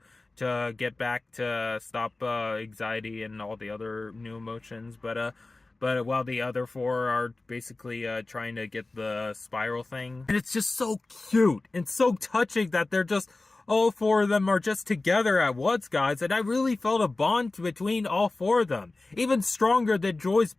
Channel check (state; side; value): quieter; right; 3.2 dB